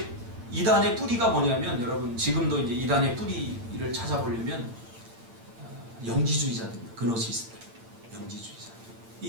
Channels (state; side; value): late; left; 8.7 ms